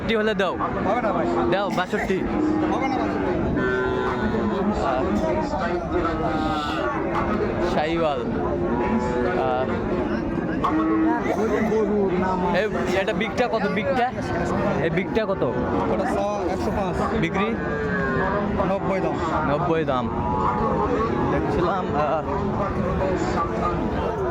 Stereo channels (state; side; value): identical; both; correlation 1.00